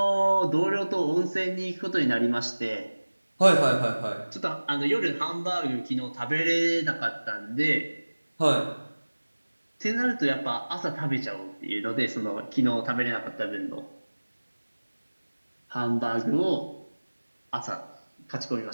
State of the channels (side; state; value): both; inverted; correlation -1.00